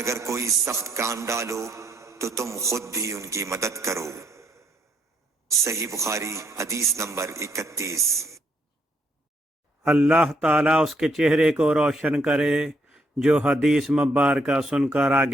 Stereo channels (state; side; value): normal; both; correlation 0.72